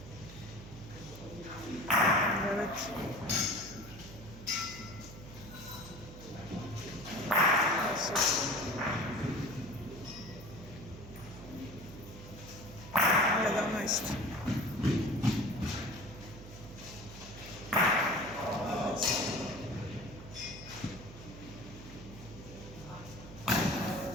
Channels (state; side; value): noise; right; hum, 15 dB below the sound